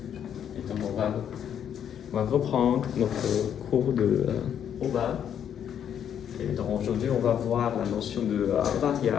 Et donc, on va reprendre notre cours de OBA. Et donc, aujourd'hui, on va voir la notion de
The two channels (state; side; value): quieter; right; 9.0 dB